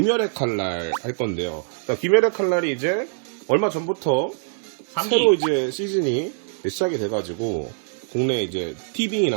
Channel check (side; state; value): left; silent; digital silence